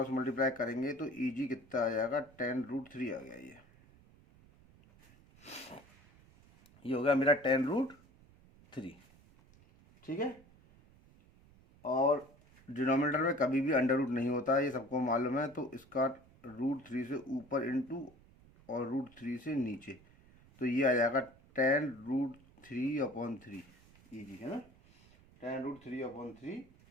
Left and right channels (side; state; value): right; noise; rumble, 26 dB below the sound